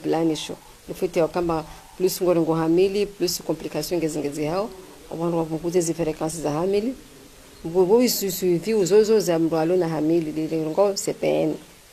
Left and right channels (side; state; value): both; identical; correlation 1.00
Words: nifute wakamba plus ngorengo hamili plus complication ngezingezi hao abantu wavunguza izi frequences za hamili ngobo isuivi uzozo za mrwalo na hamili lilengo CPN